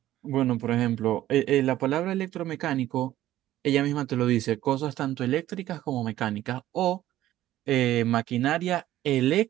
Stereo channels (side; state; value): left; quieter; 13.9 dB